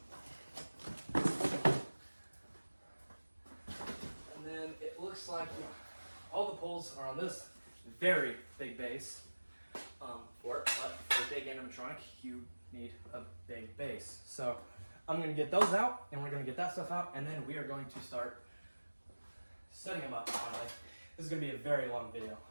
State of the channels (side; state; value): both; inverted; correlation -1.00